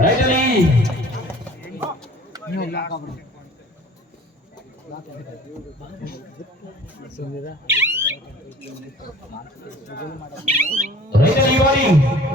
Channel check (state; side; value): normal; both; correlation 0.48